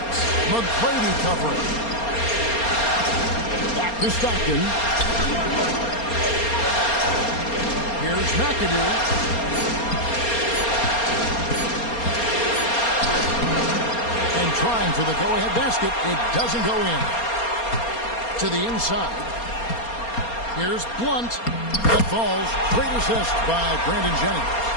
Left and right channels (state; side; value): late; right; 4.3 ms